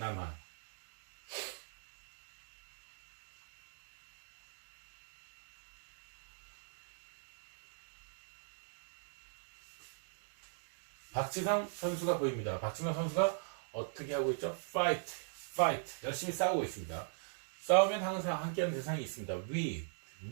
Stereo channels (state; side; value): silent; left; digital silence